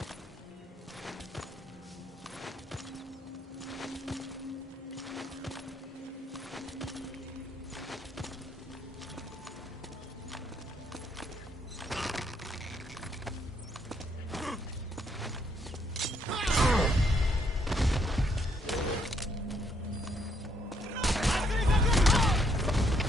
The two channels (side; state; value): both; normal; correlation 0.72